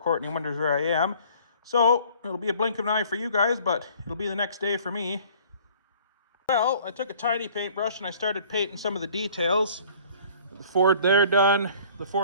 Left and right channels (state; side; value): inverted; both; correlation -0.53